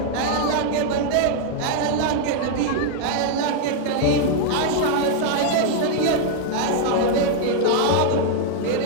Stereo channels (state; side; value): different; both; correlation 0.00